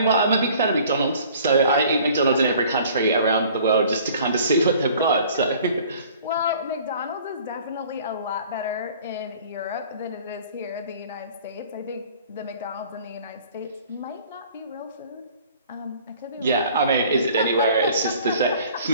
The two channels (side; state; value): both; inverted; correlation -0.51